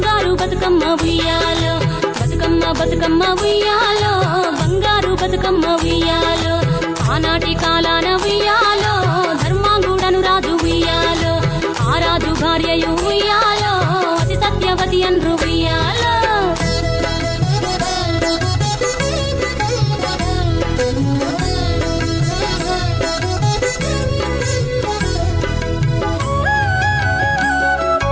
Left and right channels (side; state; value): both; identical; correlation 1.00